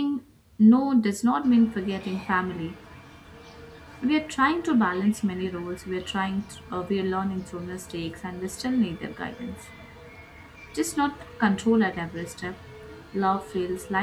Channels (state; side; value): identical; both; correlation 1.00